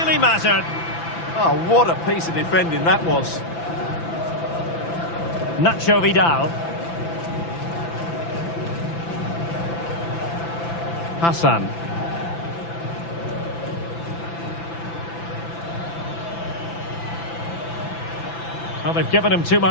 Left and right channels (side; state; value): right; late; 5.9 ms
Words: mattered. Oh, what a piece of defending that was. Nacho Vidal. Hassan. Well, they've given him too